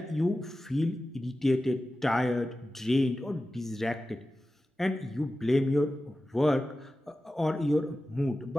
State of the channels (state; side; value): normal; both; correlation 0.94